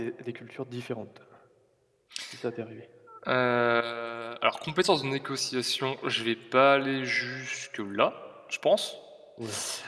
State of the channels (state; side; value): identical; both; correlation 1.00